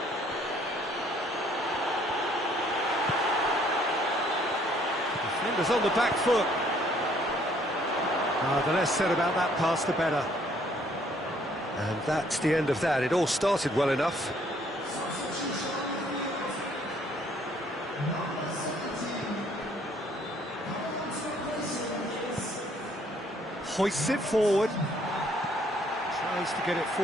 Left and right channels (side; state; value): both; normal; correlation 0.63